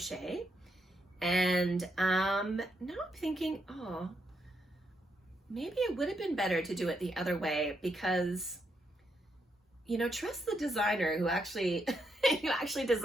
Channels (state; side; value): normal; both; correlation 0.79